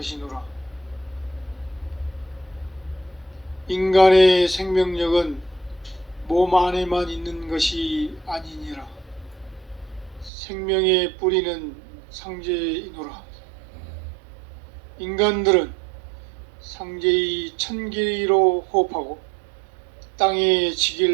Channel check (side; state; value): left; drops out; at 10.3 s